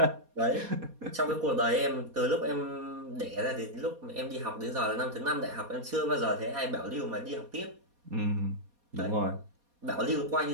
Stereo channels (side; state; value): left; late; 4.2 ms